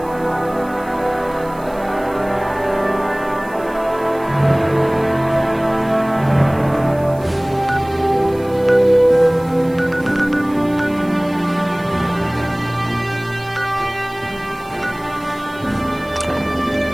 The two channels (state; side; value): noise; right; hiss, 24 dB below the sound